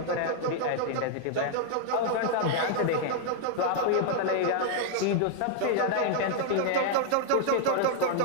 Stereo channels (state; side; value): different; both; correlation 0.00